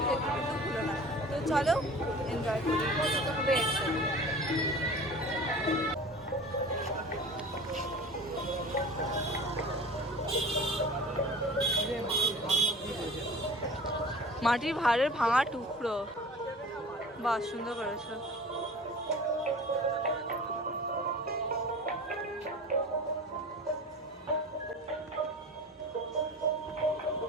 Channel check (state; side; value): normal; both; correlation 0.39